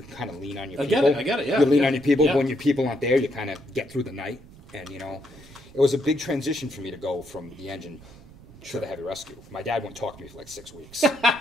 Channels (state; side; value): noise; right; rumble, 21 dB below the sound